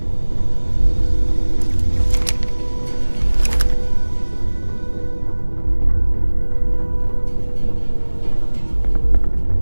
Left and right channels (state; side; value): inverted; both; correlation -1.00